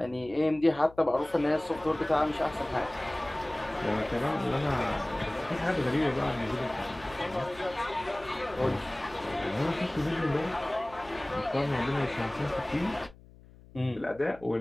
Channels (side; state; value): left; noise; hum, 22 dB below the sound